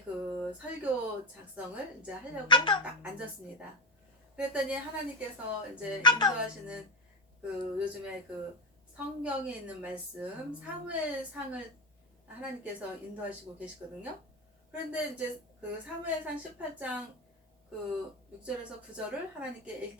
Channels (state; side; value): normal; both; correlation 0.16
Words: 그 설교 작성을 이제 하려고 딱 앉았습니다. 그랬더니 하나님께서 이제 인도하시는 그 요즘에 그 성경에 있는 말씀 사무엘상을 하나님께서 인도하시고 계시거든요. 그런데 이제 그 사무엘상 18장 그 6절에서 9절을 하나님께